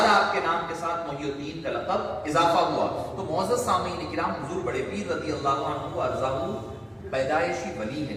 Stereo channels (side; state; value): both; identical; correlation 1.00